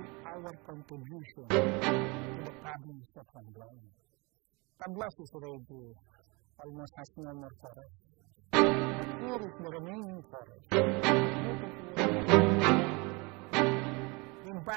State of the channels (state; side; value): quieter; left; 27.6 dB